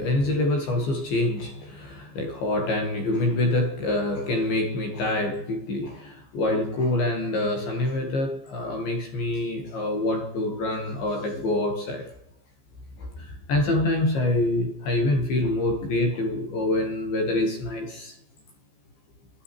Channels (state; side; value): late; right; 15 ms